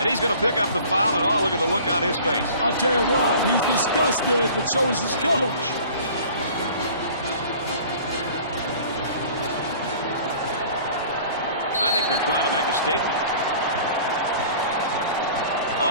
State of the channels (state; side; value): inverted; both; correlation -0.47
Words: he's going to pick up the foul, and oh, look at the look on his face. I'll tell you what, he's disgusted, but so is his coach. I think they're trying to make a statement.